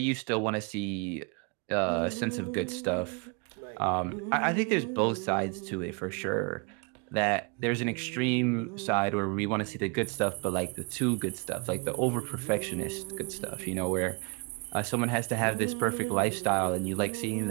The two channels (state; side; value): quieter; left; 32.5 dB